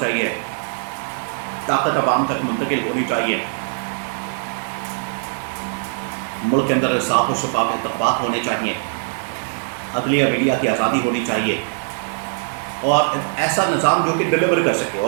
چاہیے، طاقت عوام تک منتقل ہونی چاہیے، ملک کے اندر صاف و شفاف انتخابات ہونے چاہیے، عدلیہ میڈیا کی آزادی ہونی چاہیے، اور ایسا نظام جو کہ ڈلیور کر سکے.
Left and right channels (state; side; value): silent; left; digital silence